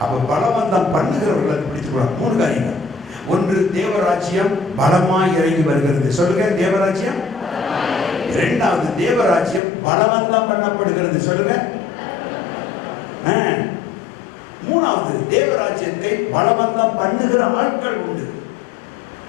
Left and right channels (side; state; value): right; drops out; at 9.6 s